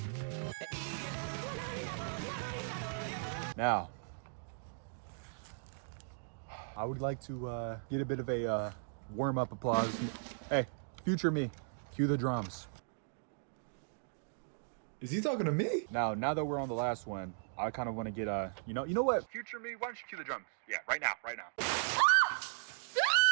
Now, I would like to get a bit of a warm-up applause. Hey, future me, cue the drums. Is he talking to me? Now that we're on the last one, I kind of want to get you know what? Future me, why don't you cue the drums? Yeah, right now.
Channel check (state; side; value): silent; left; digital silence